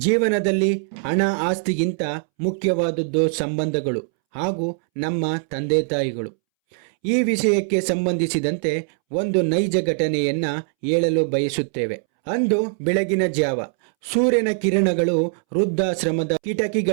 ಹಣ ಆಸ್ತಿಗಿಂತ ಮುಖ್ಯವಾದದ್ದು ಸಂಬಂಧಗಳು ಹಾಗೂ ನಮ್ಮ ತಂದೆ ತಾಯಿಗಳು. ಈ ವಿಷಯಕ್ಕೆ ಸಂಬಂಧಿಸಿದಂತೆ ಒಂದು ನೈಜ ಘಟನೆಯನ್ನು ಹೇಳಲು ಬಯಸುತ್ತೇವೆ. ಅಂದು ಬೆಳಗಿನ ಜಾವ ಸೂರ್ಯನ ಕಿರಣಗಳು ವೃದ್ಧಾಶ್ರಮದ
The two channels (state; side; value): silent; left; 64 dB below the other